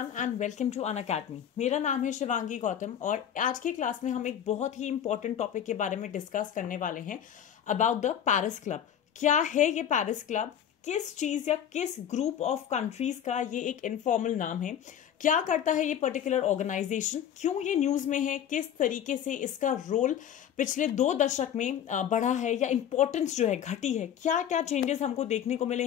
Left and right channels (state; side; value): quieter; right; 9.5 dB